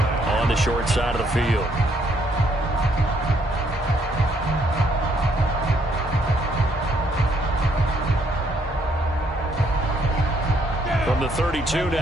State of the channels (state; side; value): normal; both; correlation 0.70